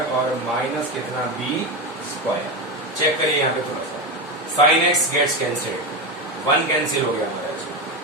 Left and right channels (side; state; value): both; normal; correlation 0.16